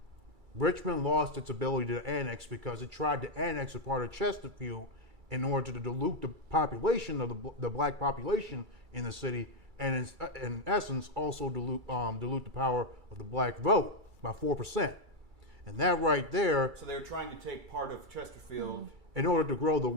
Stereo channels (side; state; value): left; late; 2.3 ms